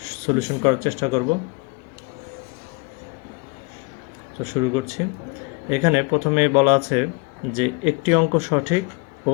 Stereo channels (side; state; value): right; quieter; 27.7 dB